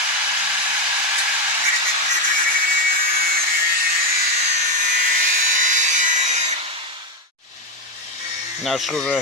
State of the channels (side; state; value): both; normal; correlation 0.08